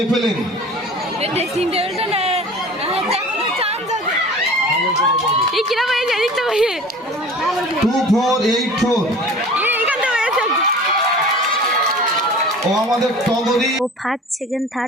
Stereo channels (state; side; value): normal; both; correlation 0.41